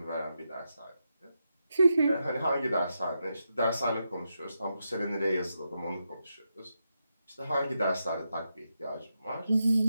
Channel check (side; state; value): both; inverted; correlation -0.86